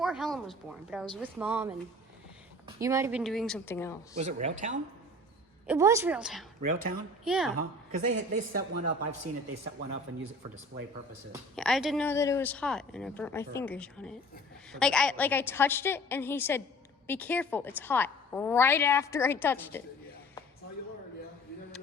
Helen was born, but I was with mom and you might have been doing something else. Was it Railtown? It was Railtown. Railtown? Yeah. Because they set one up. I've seen it. They set one up and use it for display purposes. Yeah, I didn't know that it was hot and I burnt my fingers on it. I touched it and he said, "Be careful, it's hot." Right after I touched it. Yeah. That's how you learn, yeah. You never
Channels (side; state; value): both; normal; correlation 0.46